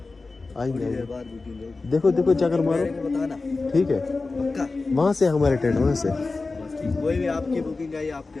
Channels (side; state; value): right; quieter; 3.7 dB